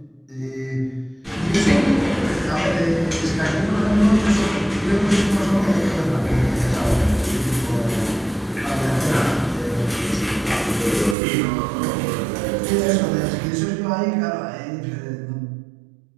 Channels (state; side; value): drops out; left; at 11.2 s